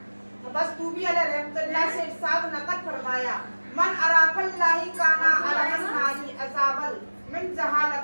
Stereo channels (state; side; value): inverted; both; correlation -1.00